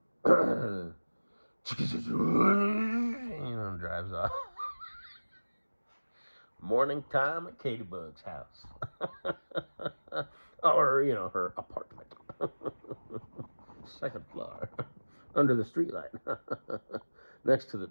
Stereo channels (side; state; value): both; inverted; correlation -1.00